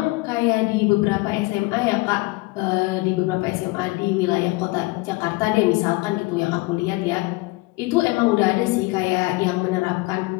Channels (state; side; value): quieter; right; 23.5 dB